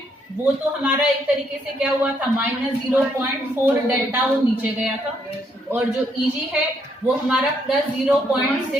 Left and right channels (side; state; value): both; normal; correlation 0.73